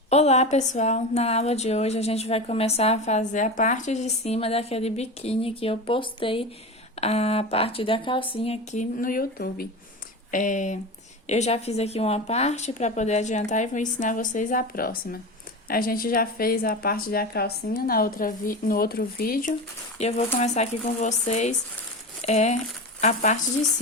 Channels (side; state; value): both; normal; correlation 0.25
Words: Olá pessoal, na aula de hoje a gente vai começar a fazer a parte de cima daquele biquíni que eu postei a parte da calcinha aqui no YouTube. Eu já fiz aqui uma parte para poder adiantar e vou ensinar vocês a próxima. A gente já fez a parte da calcinha no outro vídeo e eu vou começar aqui com vocês a parte de